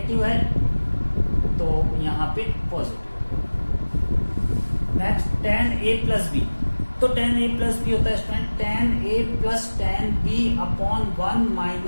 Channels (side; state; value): both; inverted; correlation -1.00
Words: है तो यहाँ पे positive. Next ten A plus B. तो टेन ए प्लस बी होता है student ten A plus ten B upon 1